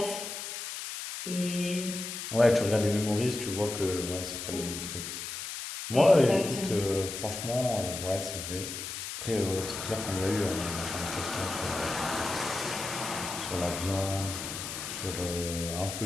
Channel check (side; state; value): left; noise; hiss, 6 dB below the sound